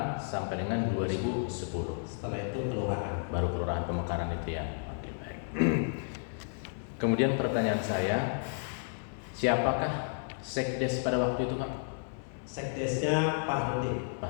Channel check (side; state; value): right; silent; 55 dB below the other